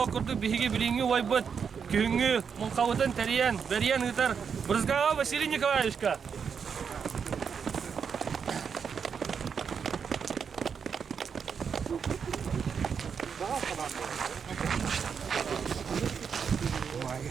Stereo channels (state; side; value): quieter; left; 6.6 dB